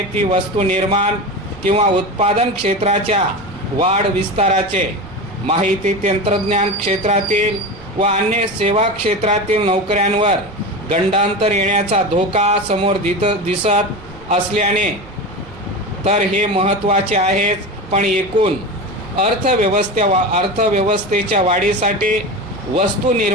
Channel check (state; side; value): noise; right; rumble, 20 dB below the sound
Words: ती वस्तू निर्माण किंवा उत्पादन क्षेत्राच्या वाढ विस्ताराचे। माहिती तंत्रज्ञान क्षेत्रातील व अन्य सेवा क्षेत्रातील नोकऱ्यांवर गंडांतर येण्याचा धोका समोर दिसत असल्याने तर हे महत्त्वाचे आहेच, पण एकूण अर्थव्यवस्थेच्या वाढीसाठी वस्तू